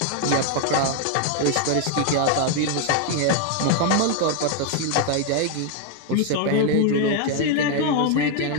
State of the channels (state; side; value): different; both; correlation 0.01